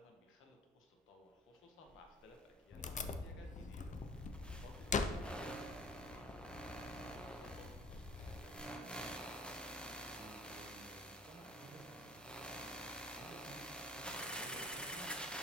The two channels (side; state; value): both; normal; correlation 0.49